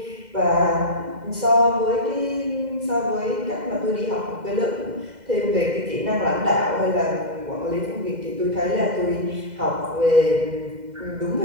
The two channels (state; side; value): late; left; 2.0 ms